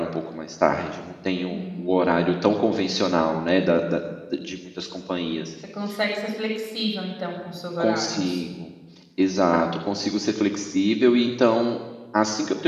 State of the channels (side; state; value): both; identical; correlation 1.00